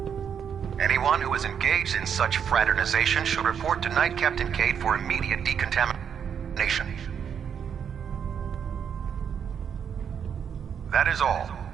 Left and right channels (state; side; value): quieter; left; 7.7 dB